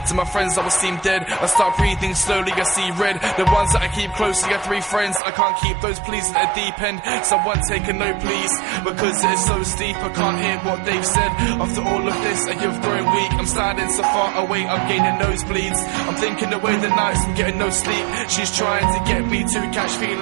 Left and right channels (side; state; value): left; drops out; at 5.2 s